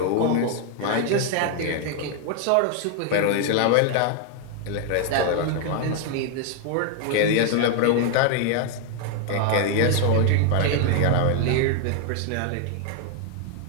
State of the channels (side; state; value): both; different; correlation 0.00